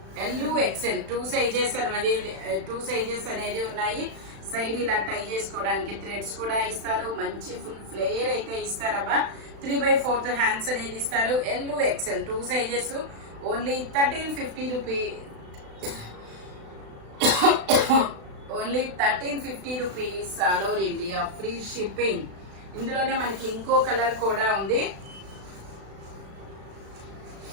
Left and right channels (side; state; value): left; late; 36 ms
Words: L, XL 2 sizes అనేది ఉన్నాయి. సైడ్ ఇలా టై చేసుకోవడానికి థ్రెడ్స్ కూడా ఇస్తారు. మంచి ఫుల్ ఫ్లేయర్ అయితే ఇస్తారబ్బా. 3/4 హ్యాండ్స్ అనేది ఇస్తారు. L, XL 2 sizes. Only 1350 rupees. Only 1350 rupees all over India free shipping. ఇందులోనే మనకి ఇంకో కలర్ కూడా ఉంది.